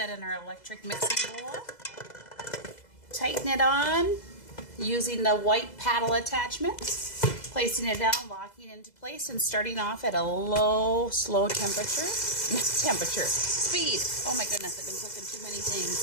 in our electric mixing bowl. Tighten it on using the white paddle attachment. Placing it down, locking into place, and starting off at a low, slow temperature. Speed. Oh my goodness, I've been cooking too many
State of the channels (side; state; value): right; late; 2.0 ms